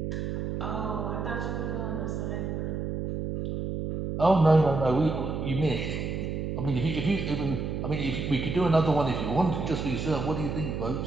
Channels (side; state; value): right; noise; hum, 3 dB below the sound